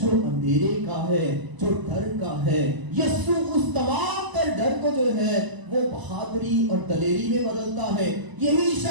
اندھیرے کا ہے، جو ڈر کا ہے، یسوع اس تمام تر ڈر کو جو ہے وہ بہادری اور دلیری میں بدلتا ہے۔ یہی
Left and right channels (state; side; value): late; left; 1.0 ms